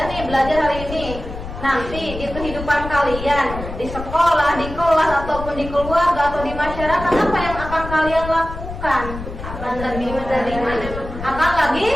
nih belajar hari ini. Nanti di kehidupan kalian di sekolah, di kelas ataupun di keluarga atau di masyarakat apa yang akan kalian lakukan? Akan lebih menerima, akan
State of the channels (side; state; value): left; noise; rumble, 10 dB below the sound